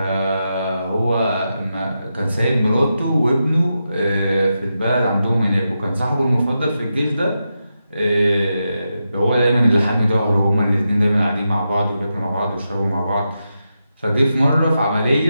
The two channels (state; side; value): inverted; both; correlation -0.88